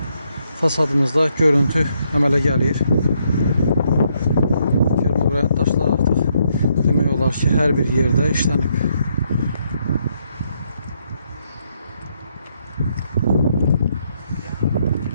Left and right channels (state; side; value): inverted; both; correlation -0.75